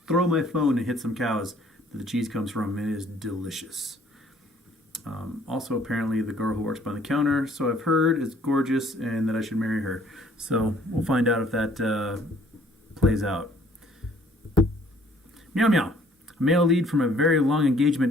throw my phone and hit some cows that the cheese comes from. It is delicious. Also, apparently, the girl who works by the counter, so I've heard, is gorgeous and that I should marry her. So we'll find out if that plays out. Meow meow. A male lead from a very long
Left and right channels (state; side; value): normal; both; correlation 0.59